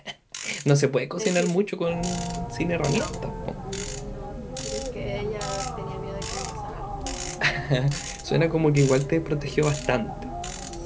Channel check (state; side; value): identical; both; correlation 1.00